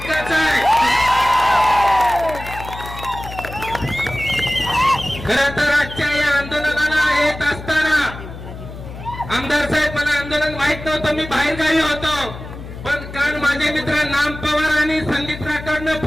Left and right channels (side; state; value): left; noise; hum, 12 dB below the sound